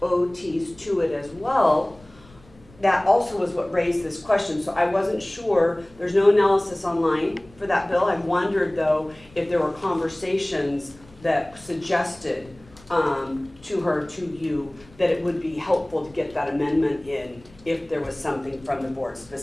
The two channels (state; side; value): noise; left; rumble, 25 dB below the sound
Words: OTs to it as well, that also was what raised this question. So I wasn't sure, there's no analysis online for that bill. I wondered though if there were conversations that suggested to her, to you, that it would be helpful to get that amendment in if there was something from the board